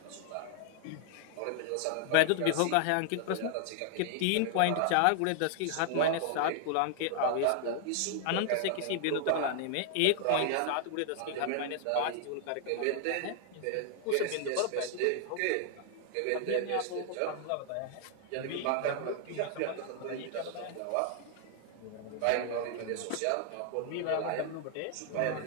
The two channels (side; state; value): both; different; correlation 0.00